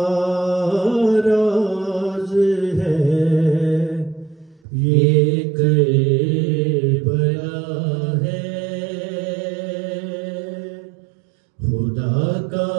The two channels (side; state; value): left; drops out; at 4.6 s